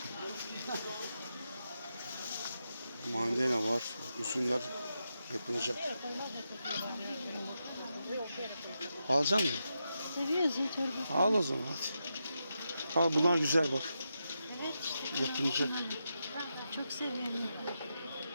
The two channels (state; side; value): inverted; both; correlation -0.86